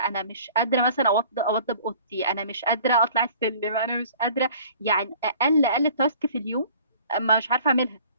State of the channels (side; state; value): both; inverted; correlation -0.50